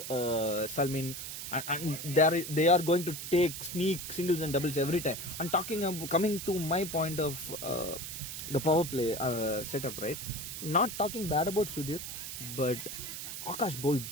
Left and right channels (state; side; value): noise; right; hiss, 7 dB below the sound